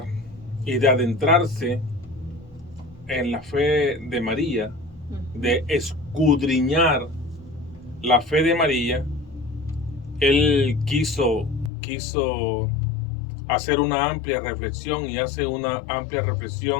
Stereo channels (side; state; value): right; drops out; at 11.7 s